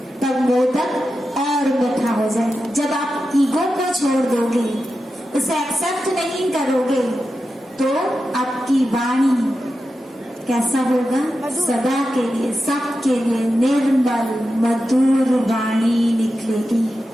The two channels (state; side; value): normal; both; correlation 0.91